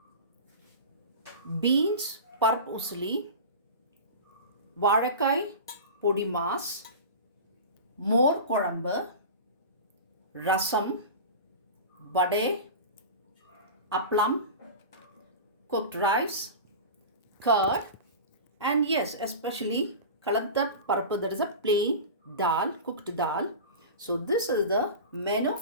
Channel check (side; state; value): both; inverted; correlation -0.31